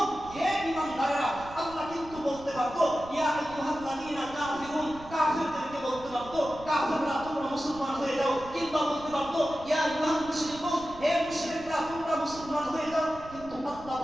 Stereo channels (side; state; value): right; noise; rumble, 18 dB below the sound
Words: হে ঈমানদাররা, আল্লাহ কিন্তু বলতে পারতো ইয়া আইয়ুহাল্লাযীনা কাফিরুন, কাফিরদেরকে বলতে পারতো কাফিররা তোমরা মুসলমান হয়ে যাও, কিংবা বলতে পারতো ইয়া আইয়ুহাল মুশরিকুন, হে মুশরিকরা তোমরা মুসলমান হয়ে যাও, কিন্তু আল্লাহ